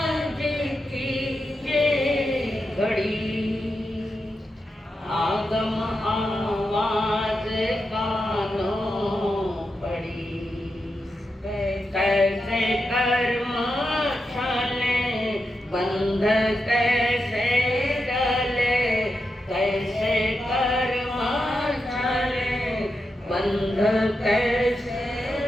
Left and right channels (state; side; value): normal; both; correlation 0.87